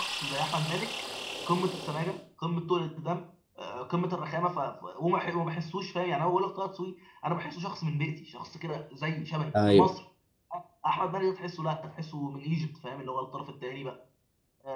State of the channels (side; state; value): both; identical; correlation 1.00